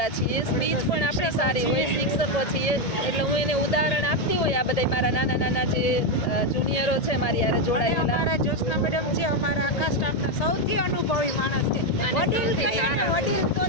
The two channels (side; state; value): right; late; 1.8 ms